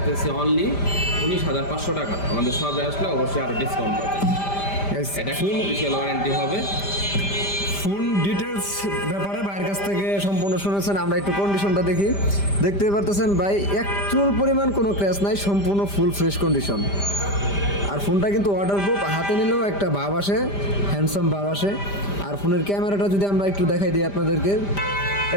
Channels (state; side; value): late; right; 5.0 ms